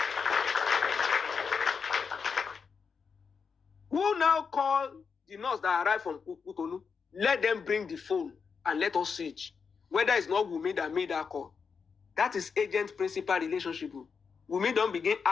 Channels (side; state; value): right; quieter; 5.7 dB